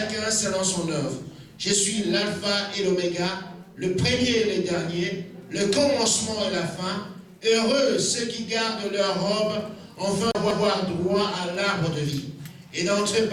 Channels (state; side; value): identical; both; correlation 1.00